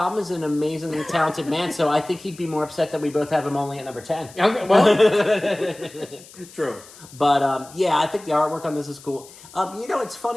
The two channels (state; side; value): noise; left; hiss, 21 dB below the sound